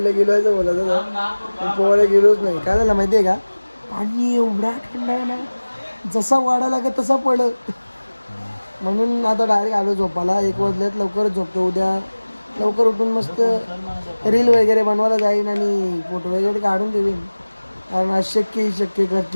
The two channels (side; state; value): both; inverted; correlation -1.00